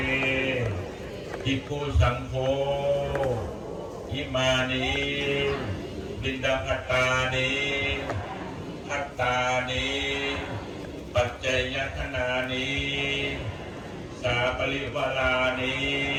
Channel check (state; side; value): identical; both; correlation 1.00